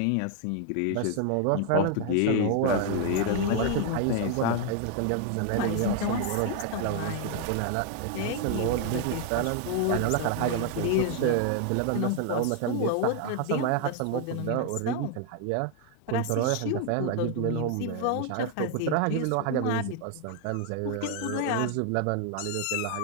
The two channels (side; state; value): both; different; correlation 0.00